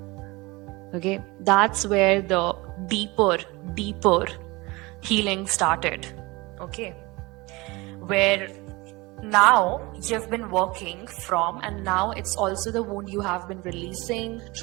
Okay, that's where the deeper healing started. Okay, where now you've been working from, and now it's also the wound you have been releasing,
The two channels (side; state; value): left; quieter; 23.5 dB